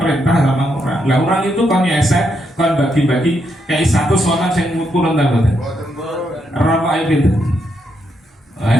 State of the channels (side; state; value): both; normal; correlation 0.79